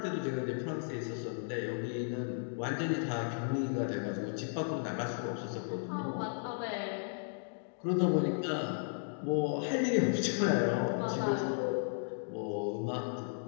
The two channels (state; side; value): silent; right; digital silence